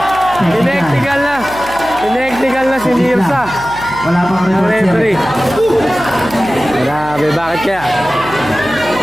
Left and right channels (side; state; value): right; noise; hum, 17 dB below the sound